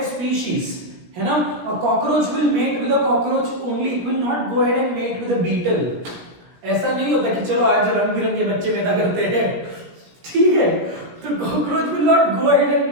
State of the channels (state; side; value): late; left; 17 ms